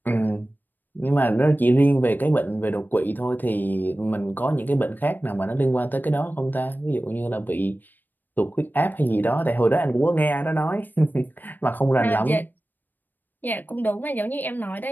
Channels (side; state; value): right; late; 0.090 ms